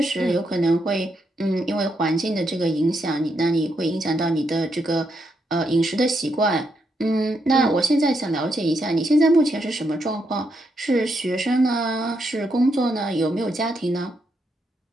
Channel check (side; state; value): both; normal; correlation 0.80